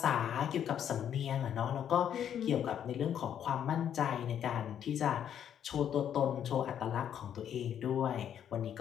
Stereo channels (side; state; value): right; quieter; 9.4 dB